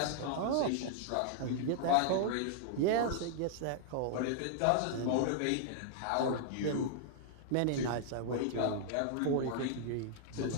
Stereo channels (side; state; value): both; different; correlation -0.01